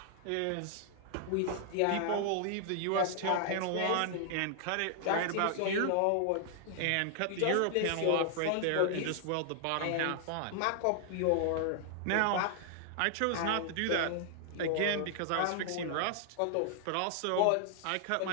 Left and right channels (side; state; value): both; different; correlation 0.00